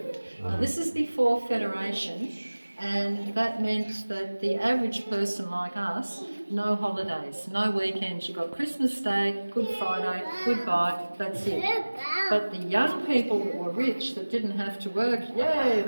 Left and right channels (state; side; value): inverted; both; correlation -1.00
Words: Now this is before Federation, and that meant that the average person like us, no holidays, no weekends. You got Christmas Day, Good Friday, goodbye, that's it. But the young people that were rich, that didn't have to work, yay,